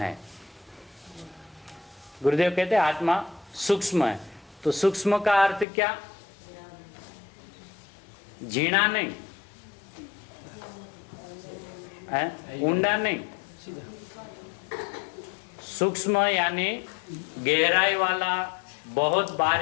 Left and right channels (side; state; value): right; drops out; at 5.7 s